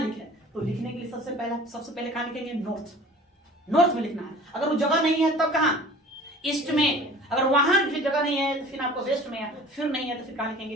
तो लिखने के लिए सबसे पहले कहाँ लिखेंगे? नॉर्थ में लिखना है। अगर वो जगह नहीं है तब कहाँ? ईस्ट में। अगर वहां भी जगह नहीं है तो फिर आपको वेस्ट में है, फिर नहीं है तो फिर कहाँ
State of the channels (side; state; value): both; normal; correlation 0.44